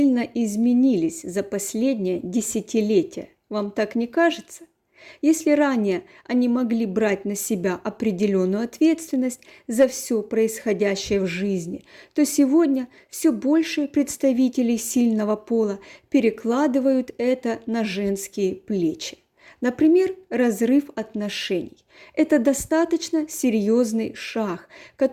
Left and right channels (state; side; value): identical; both; correlation 1.00